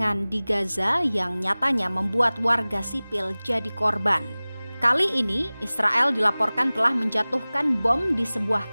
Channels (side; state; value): both; inverted; correlation -0.99